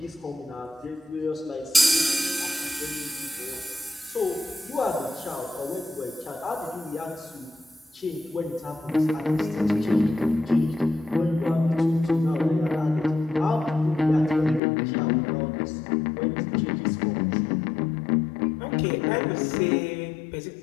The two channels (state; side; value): drops out; right; at 14.6 s